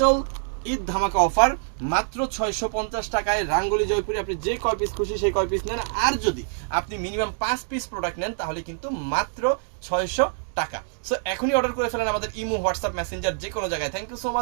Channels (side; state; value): left; silent; digital silence